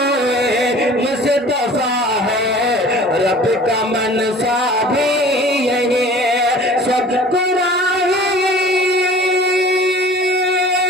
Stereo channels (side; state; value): both; normal; correlation 0.45